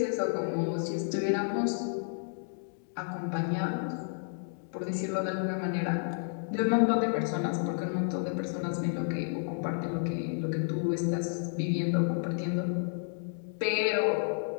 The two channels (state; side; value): silent; right; digital silence